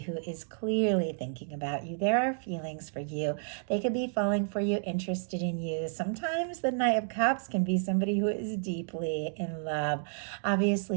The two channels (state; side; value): silent; left; digital silence